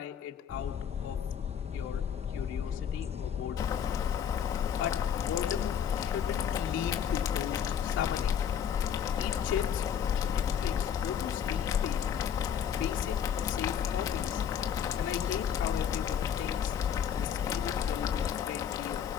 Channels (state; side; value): quieter; right; 8.5 dB